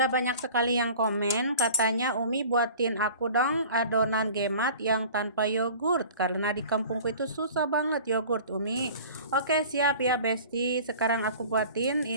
banyak sekali yang komen, katanya Umi buatin aku dong adonan gemat yang tanpa yogurt. Karena di kampungku itu susah banget yogurt, Umi. Oke, siap ya Besti. Sekarang aku buatin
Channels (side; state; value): both; inverted; correlation -0.43